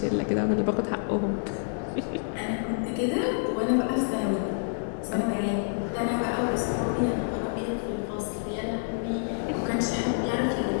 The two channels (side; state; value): right; silent; digital silence